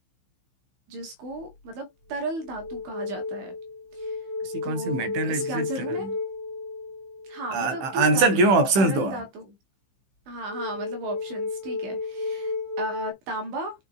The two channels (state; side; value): late; left; 15 ms